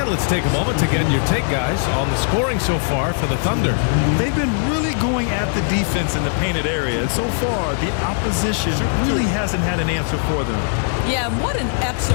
let's take a moment to get your take, guys, on the scoring so far for the Thunder. They've been really going at the defense in the painted area, and so far the opposition really hasn't had an answer for them. Yeah, and what an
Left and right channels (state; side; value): silent; right; digital silence